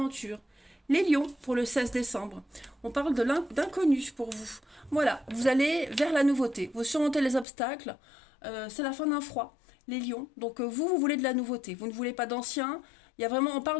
Les lions, pour le 16 décembre. On parle d'inconnu pour vous. Voilà, vous allez vers la nouveauté. Vous surmontez les obstacles. C'est la fin d'un froid. Les lions. Donc vous voulez de la nouveauté. Vous ne voulez pas d'ancien. Il y a vraiment, on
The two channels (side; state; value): right; drops out; at 7.5 s